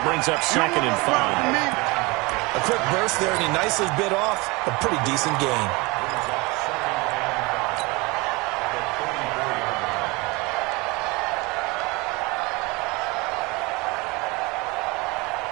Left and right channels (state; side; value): quieter; left; 25.2 dB